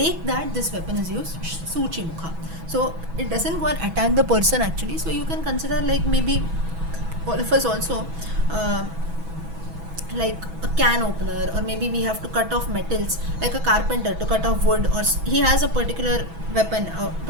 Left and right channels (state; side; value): late; left; 6.1 ms